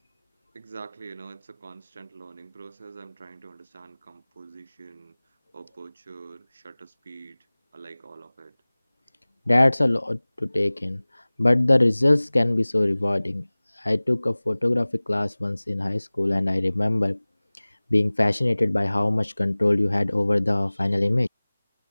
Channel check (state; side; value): inverted; both; correlation -1.00